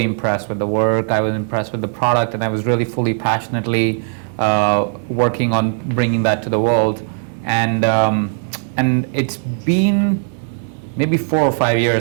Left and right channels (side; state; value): left; silent; digital silence